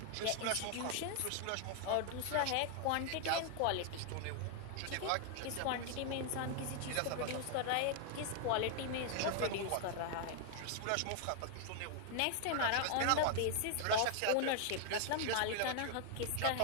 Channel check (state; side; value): different; both; correlation 0.00